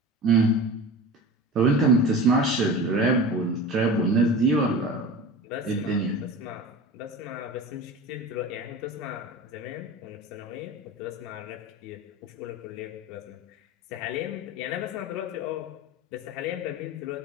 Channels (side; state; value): both; normal; correlation 0.33